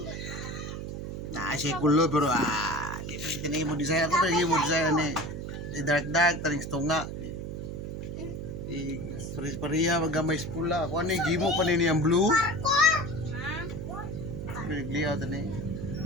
Nah, si kulur pero di pa kita naging mo design. Ako pa naging mo design ni dark taring stunga. Paris-paria magamay pula. Ako ano gimo pa ni ang blue. Ligaw tani.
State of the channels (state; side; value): noise; right; hum, 6 dB below the sound